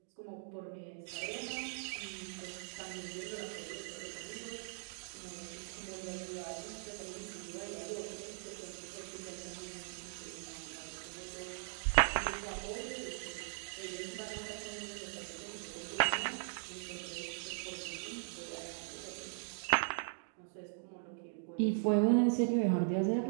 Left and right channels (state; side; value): silent; left; digital silence